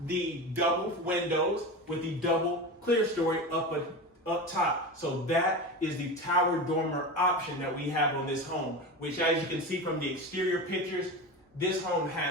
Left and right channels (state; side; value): normal; both; correlation 0.26